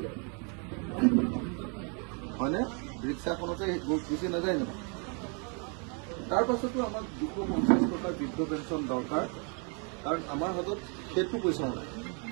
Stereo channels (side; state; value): left; quieter; 36.7 dB